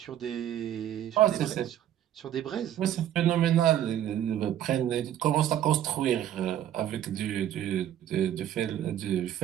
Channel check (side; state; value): left; quieter; 11.3 dB